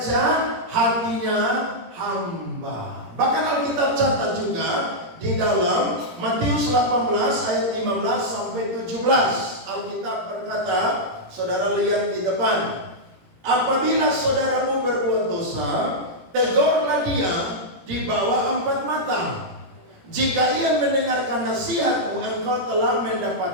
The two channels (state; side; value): late; left; 17 ms